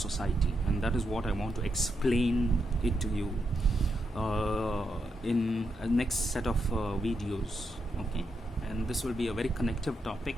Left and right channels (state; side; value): normal; both; correlation 0.83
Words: and that is what I want to explain it to you in a next set of videos. Okay, and this will be a very connective topic,